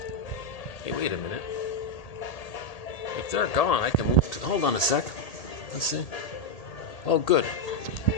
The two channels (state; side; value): late; right; 1.8 ms